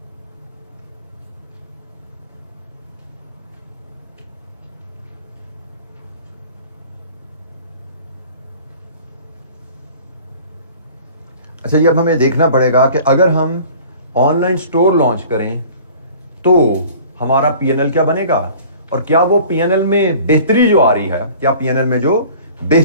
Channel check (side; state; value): both; inverted; correlation -0.47